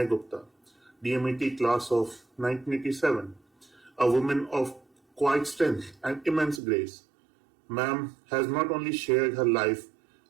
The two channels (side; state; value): left; drops out; at 6.6 s